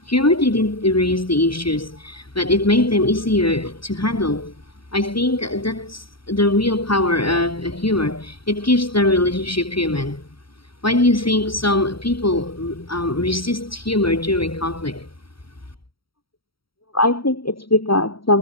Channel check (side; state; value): right; late; 0.75 ms